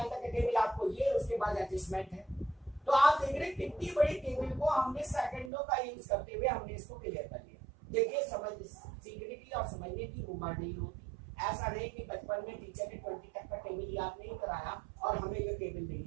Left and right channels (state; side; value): drops out; left; at 5.5 s